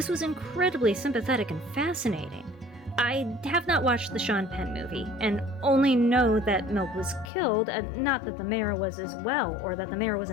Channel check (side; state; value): right; drops out; at 7.2 s